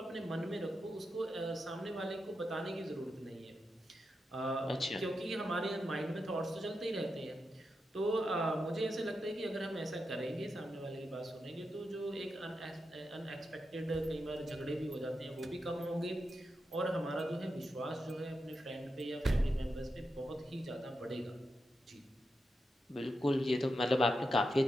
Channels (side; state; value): both; normal; correlation 0.87